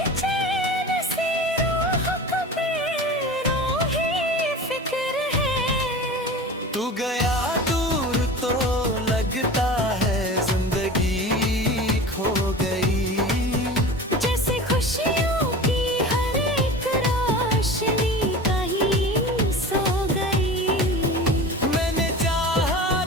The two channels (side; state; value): both; normal; correlation 0.35